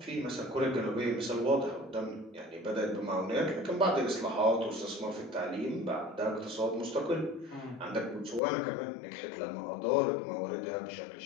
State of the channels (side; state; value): right; drops out; at 8.4 s